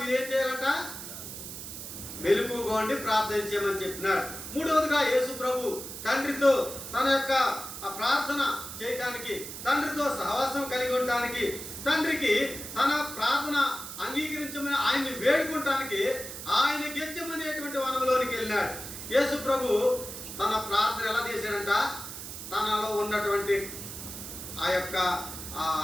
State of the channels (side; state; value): right; noise; hiss, 9 dB below the sound